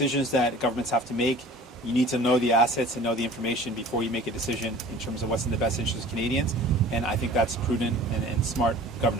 that governments have to make, you need to know the assets and know the information before you make a decision in terms of what's in the best interest of Canadians, and I think that's prudent and smart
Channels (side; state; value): both; normal; correlation 0.44